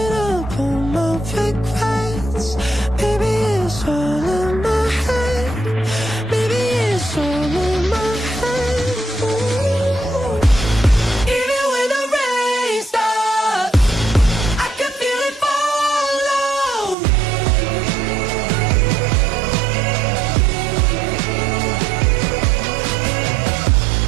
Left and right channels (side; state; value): left; drops out; at 16.9 s